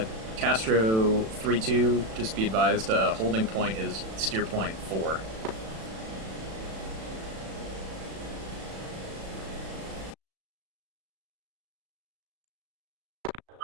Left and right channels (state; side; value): late; left; 36 ms